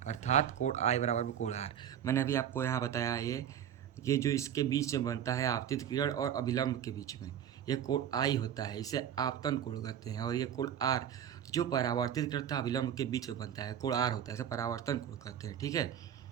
अर्थात कोण आई बराबर में कोण आर। मैंने अभी आपको यहाँ बताया, ये जो इसके बीच में बनता है आपतित किरण और अभिलंब के बीच में, ये कोण आई होता है, इसे आपतन कोण कहते हैं। और ये कोण आर जो परावर्तित किरण तथा अभिलंब के बीच में बनता है, कोण आर होता है, इसे परावर्तन कोण कहते हैं। ठीक है,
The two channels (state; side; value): quieter; left; 9.6 dB